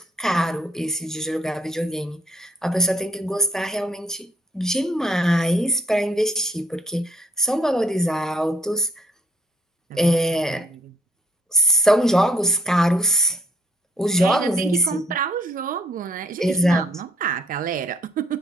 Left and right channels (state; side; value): normal; both; correlation 0.66